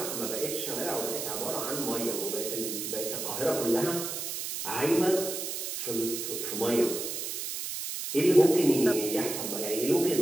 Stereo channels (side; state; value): right; noise; hiss, 4 dB below the sound